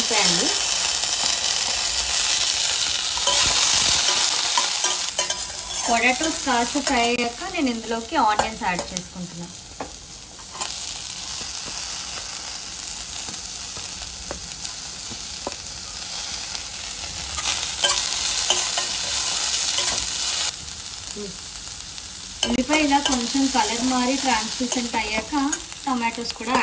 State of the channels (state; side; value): identical; both; correlation 1.00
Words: అండి. పొటాటోస్ కాస్త ఫ్రై అయ్యాక నేను ఇందులోకి ఆనియన్స్ యాడ్ చేసుకుంటున్నాను. ఉల్లిపాయ ఇలా కొంచెం కలర్ మారి ట్రాన్స్లూసెంట్ అయ్యాక టమాటోస్ కూడా